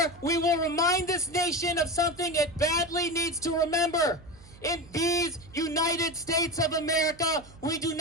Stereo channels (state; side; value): noise; right; hum, 22 dB below the sound